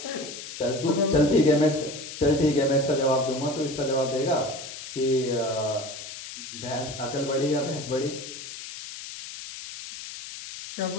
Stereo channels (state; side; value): noise; left; hiss, 11 dB below the sound